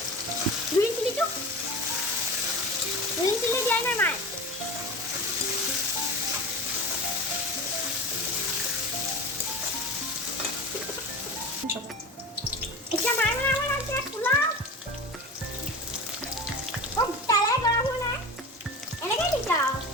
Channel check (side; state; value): both; normal; correlation 0.31